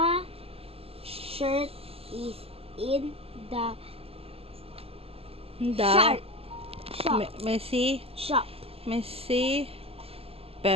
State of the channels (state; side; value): late; left; 0.28 ms